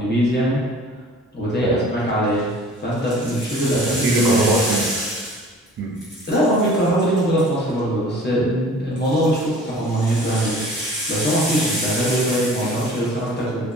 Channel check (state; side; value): normal; both; correlation 0.47